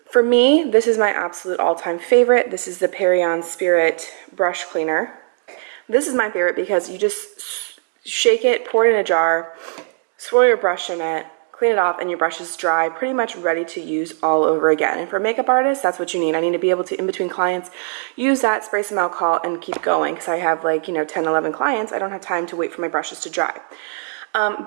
for me, this is my absolute all-time favorite. This is the Perion Spirit brush cleaner. This is my favorite because you just shake it, pour it in a jar, swirl your brush in it, clean it off, and your brush is dry, pretty much ready to use all over again. And for a makeup artist, that's what you need. I need to be able to, in between clients, use that, spray some alcohol, and keep going because I have 10, 11 clients. I don't have time to wait for my brushes to dry.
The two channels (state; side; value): silent; left; 66 dB below the other